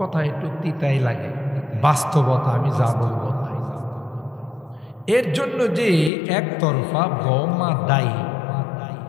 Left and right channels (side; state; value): right; drops out; at 6.1 s